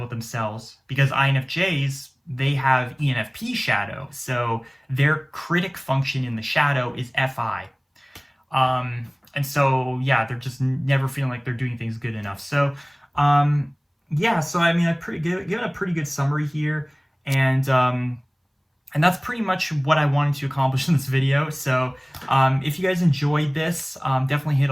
themselves, because INFJs, they have ENFP shadow. So their critic function in the shadow is FI. And so, they're just never feeling like they're doing things good enough. So, so I mean, given a pretty good summary here, and that's pretty much what I wanted to accomplish in this video. So, if you guys enjoyed this, definitely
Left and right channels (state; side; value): identical; both; correlation 1.00